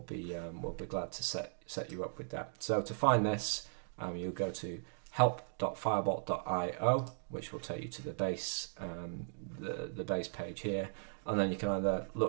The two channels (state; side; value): silent; left; digital silence